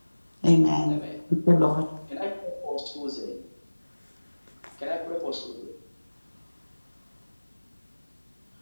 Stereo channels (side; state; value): both; inverted; correlation -1.00